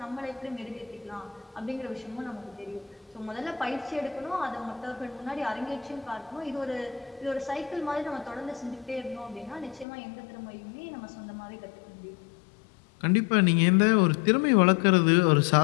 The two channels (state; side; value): drops out; right; at 9.9 s